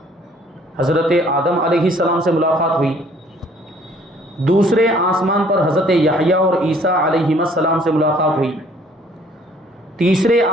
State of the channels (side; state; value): both; normal; correlation 0.58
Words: حضرت آدم علیہ السلام سے ملاقات ہوئی، دوسرے آسمان پر حضرت یحییٰ اور عیسیٰ علیہ السلام سے ملاقات ہوئی، تیسرے